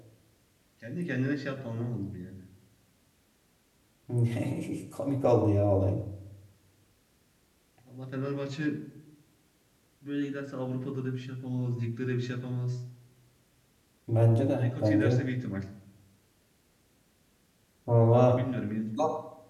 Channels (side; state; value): both; identical; correlation 1.00